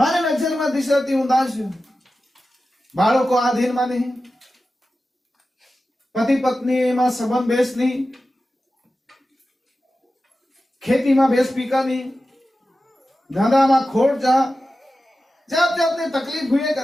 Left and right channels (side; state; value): both; normal; correlation 0.93